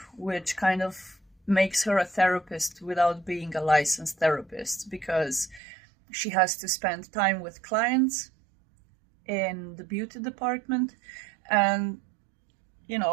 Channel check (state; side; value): drops out; left; at 5.6 s